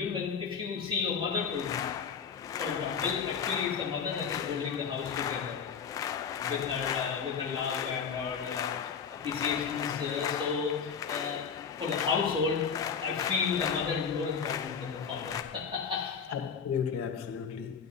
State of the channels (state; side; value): quieter; right; 6.5 dB